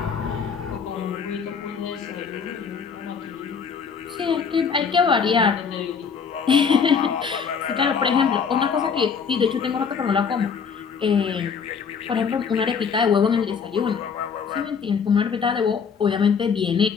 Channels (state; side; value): quieter; right; 6.2 dB